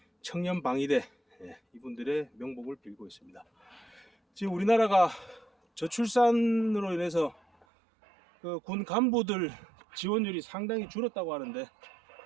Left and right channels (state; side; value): drops out; left; at 7.7 s